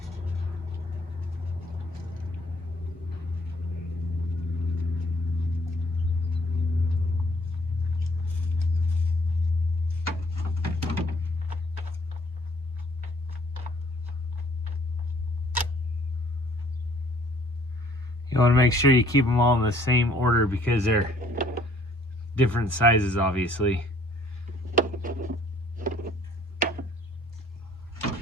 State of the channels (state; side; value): normal; both; correlation 0.60